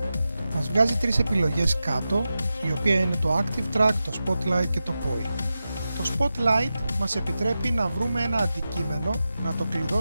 μας βγάζει τρεις επιλογές κάτω, η οποία είναι το Active Track, το Spotlight και το Point. Το Spotlight μας επιτρέπει να βρούμε ένα αντικείμενο, να το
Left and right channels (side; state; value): both; inverted; correlation -0.92